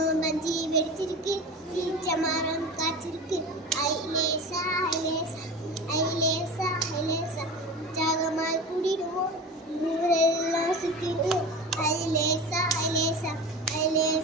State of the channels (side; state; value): both; normal; correlation 0.31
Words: மஞ்சி வெடிச்சிருக்கு ஈச்ச மரம் காய்ச்சிருக்கு ஐலேசா ஐலேசா ஐலேசா ஐலேசா உற்சாகமாய் கூடிடுவோம் ஊரெல்லாம் சுத்திடுவோம் ஐலேசா ஐலேசா